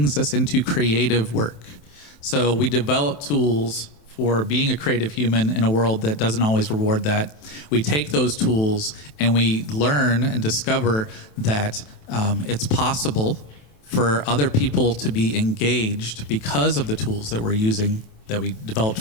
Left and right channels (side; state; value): right; late; 27 ms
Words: us into creative work. So we develop tools for being a creative human in a world that doesn't always reward that. We take those tools and we learn and discover that it's possible for other people to be engaged because of the tools that we're using, that we developed